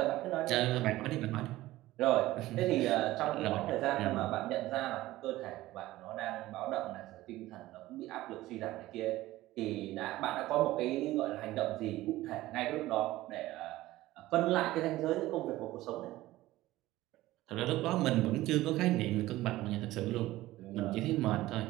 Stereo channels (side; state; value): left; quieter; 16.8 dB